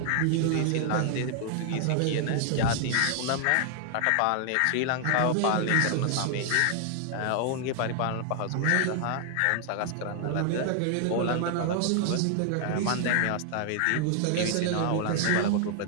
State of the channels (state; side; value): different; both; correlation 0.00